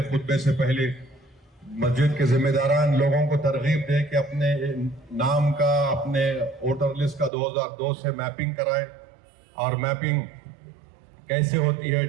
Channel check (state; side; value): drops out; left; at 7.3 s